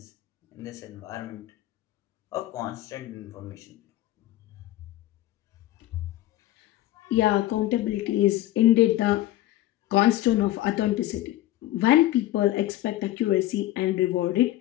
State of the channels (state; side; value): quieter; right; 15.1 dB